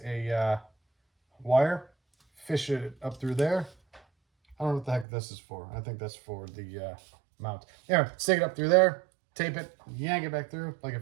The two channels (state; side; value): drops out; left; at 5.1 s